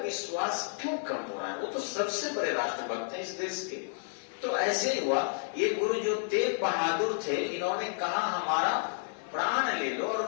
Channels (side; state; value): right; silent; digital silence